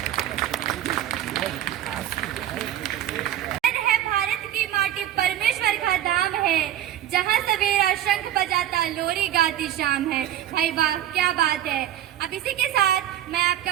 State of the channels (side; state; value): left; quieter; 11.8 dB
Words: है भारत की माटी परमेश्वर का धाम है, जहाँ सवेरा शंख बजाता लोरी गाती शाम है। भाई वाह, क्या बात है। अब इसी के साथ मैं